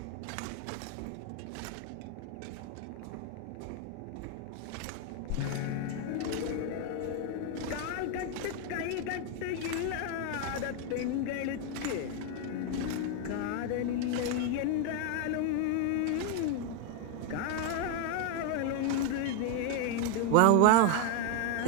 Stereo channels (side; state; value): both; different; correlation 0.01